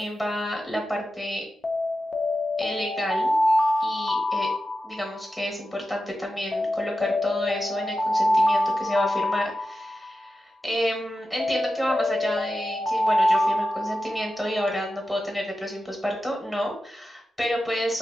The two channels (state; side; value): normal; both; correlation 0.92